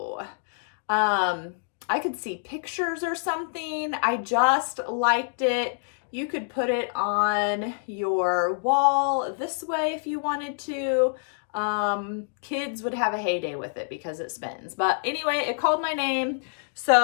I could see pictures or something. I just liked it. You could put it on your wall this way if you wanted to. Kids would have a heyday with it because it spins. But anyway, it called my name,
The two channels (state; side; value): silent; right; digital silence